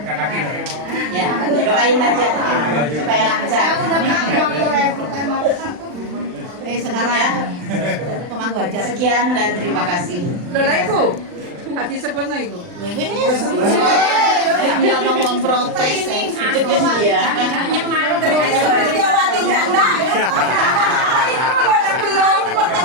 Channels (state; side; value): late; left; 39 ms